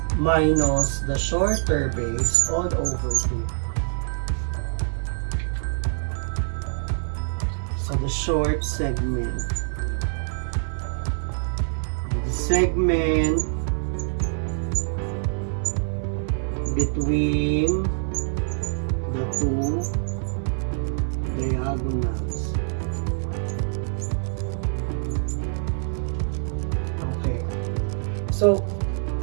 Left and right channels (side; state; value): left; silent; digital silence